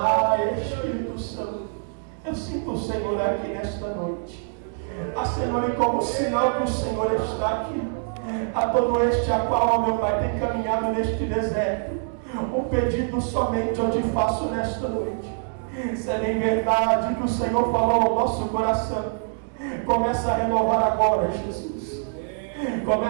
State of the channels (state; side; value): silent; left; digital silence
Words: Espírito Santo, eu sinto o Senhor aqui nesta noite. Ah, Senhor, e como sinal que o Senhor está aqui, a todo este a qual, ó meu Pai, tem caminhado neste deserto, um pedido somente eu te faço nesta noite. Se é bem verdade que o Senhor falou ao nosso coração, começa a renovar agora, Jesus.